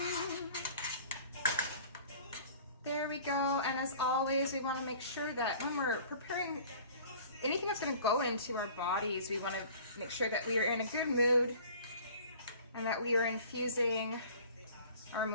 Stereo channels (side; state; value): both; inverted; correlation -0.47